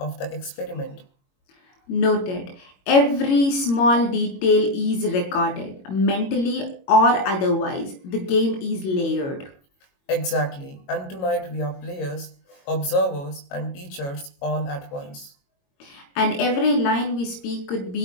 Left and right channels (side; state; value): right; late; 22 ms